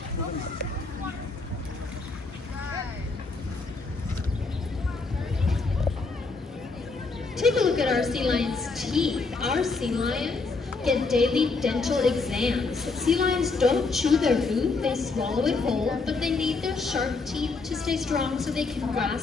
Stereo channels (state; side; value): quieter; right; 4.0 dB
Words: Take a look at our sea lions' teeth. Our sea lions get daily dental exams. Sea lions don't chew their food, they swallow it whole, but they need their sharp teeth to stay strong so they can